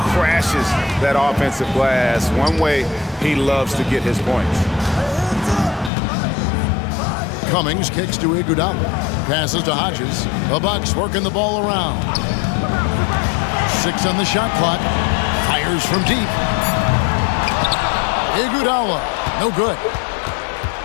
that offensive glass. One way he loves to get his points. Cummings kicks to Iguodala. Passes to Hodges. The Bucks working the ball around. 6 on the shot clock. Fires from deep. Iguodala. No good.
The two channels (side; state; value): right; drops out; at 5.9 s